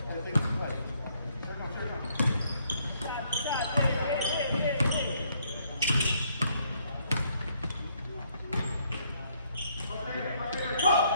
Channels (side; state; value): both; inverted; correlation -0.70